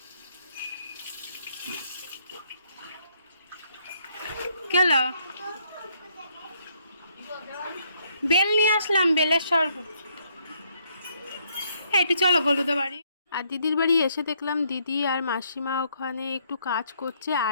গেল বেল নিয়ে আসলাম, বেলের শরবত। একটু চলো হলুদে বাড়ি। আর দিদির বাড়ি এসে দেখলাম দিদি আর মাসিমা ওখানে একটু কাজ করছে,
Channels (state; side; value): inverted; both; correlation -0.70